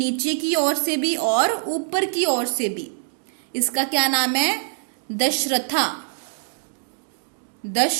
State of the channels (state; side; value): silent; left; digital silence